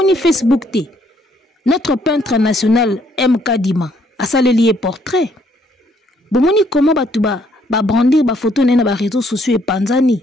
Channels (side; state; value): both; normal; correlation 0.67